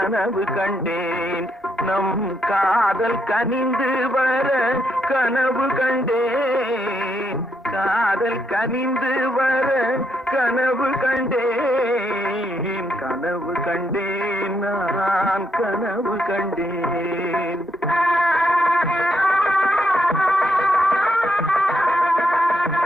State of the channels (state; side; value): normal; both; correlation 0.78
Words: கண்டேன், நம் காதல் கனிந்து வர கனவு கண்டேன், காதல் கனிந்து வர கனவு கண்டேன், கனவு கண்டேன் நான் கனவு கண்டேன்.